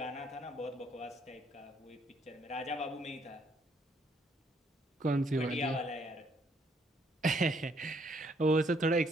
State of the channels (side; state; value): both; normal; correlation 0.68